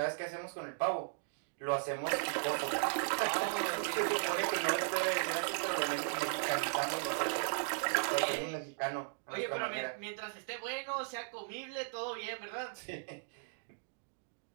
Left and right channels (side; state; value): left; silent; digital silence